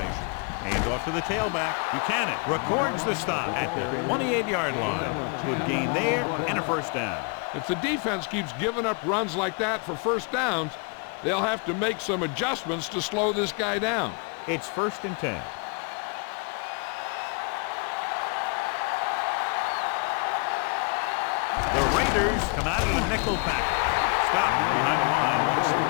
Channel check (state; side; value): quieter; right; 35.4 dB